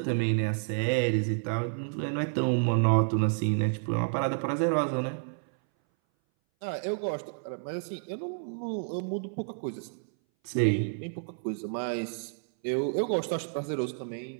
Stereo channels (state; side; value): silent; left; 58 dB below the other